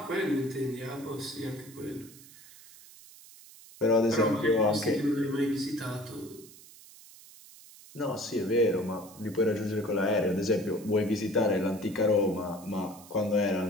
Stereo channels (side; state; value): right; noise; hiss, 20 dB below the sound